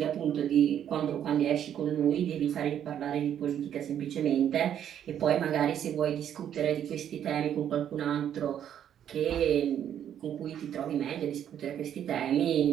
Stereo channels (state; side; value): quieter; left; 9.8 dB